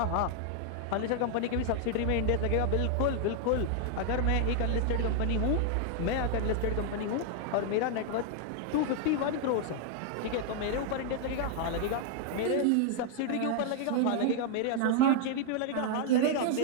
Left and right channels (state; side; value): different; both; correlation 0.00